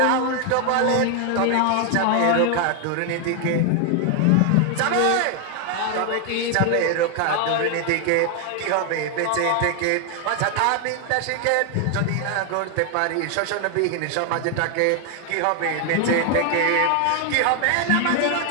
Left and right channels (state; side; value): different; both; correlation 0.00